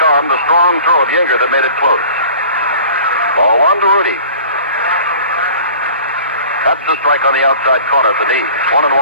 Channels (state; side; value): inverted; both; correlation -0.45